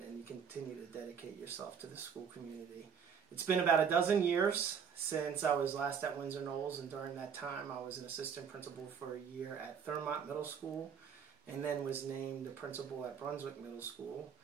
you continue to dedicate yourself to the school community. It's been about a dozen years since I was last at Windsor Knolls, and during that time I was an assistant principal for a year at Thurmont Middle School, and then was named the principal at Brunswick Middle School.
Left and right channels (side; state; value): left; quieter; 7.1 dB